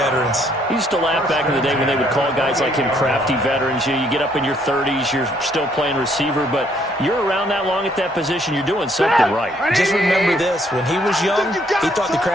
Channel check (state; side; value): normal; both; correlation 0.67